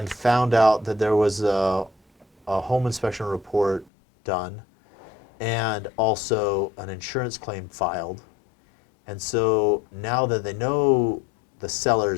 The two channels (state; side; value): drops out; right; at 3.9 s